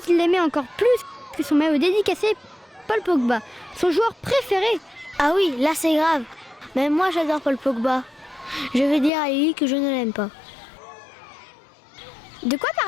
qu'il l'aimait encore plus que son maillot dédicacé, Paul Pogba, son joueur préféré. Ah oui, là c'est grave. Même moi j'adore Paul Pogba. Je vais dire à Lily que je ne l'aime pas. De quoi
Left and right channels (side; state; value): right; drops out; at 9.1 s